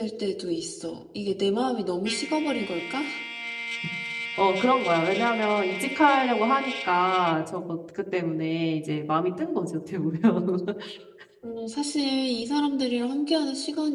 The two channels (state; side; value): identical; both; correlation 1.00